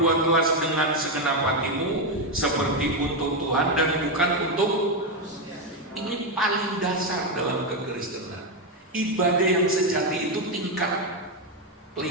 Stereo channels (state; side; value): normal; both; correlation 0.07